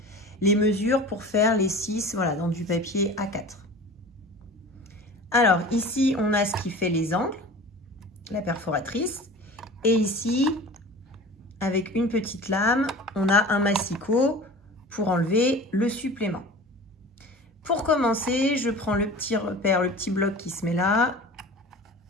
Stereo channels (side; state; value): both; normal; correlation 0.39